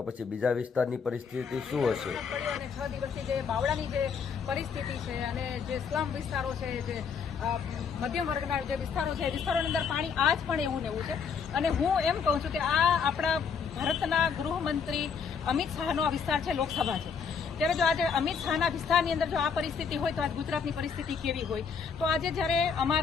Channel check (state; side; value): quieter; right; 6.2 dB